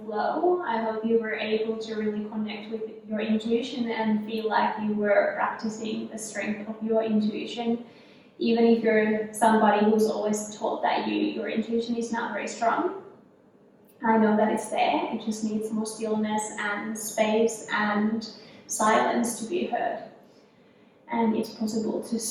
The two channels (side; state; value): both; identical; correlation 1.00